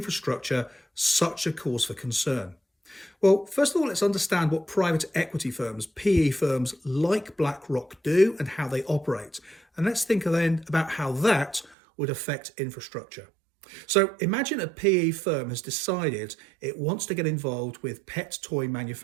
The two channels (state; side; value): drops out; left; at 11.8 s